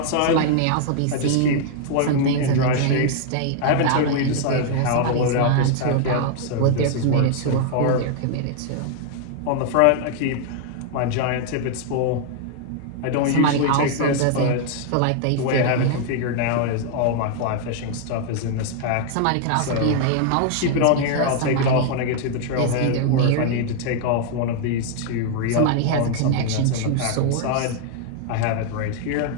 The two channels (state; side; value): different; both; correlation 0.00